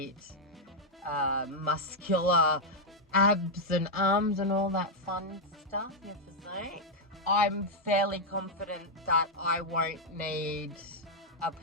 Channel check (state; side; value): normal; both; correlation -0.01